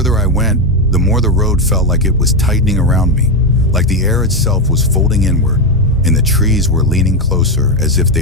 I went, the more the road felt like it was tightening around me, like the air itself was folding inward, and the trees were leaning closer as if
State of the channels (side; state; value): both; normal; correlation 0.08